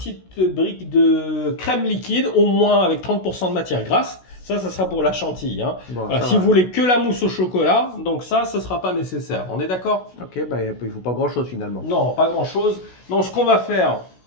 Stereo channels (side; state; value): right; late; 16 ms